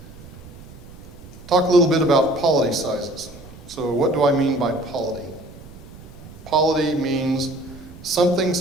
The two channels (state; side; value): noise; right; rumble, 18 dB below the sound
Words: Talk a little bit about polity sizes. So what do I mean by polity? Polity means something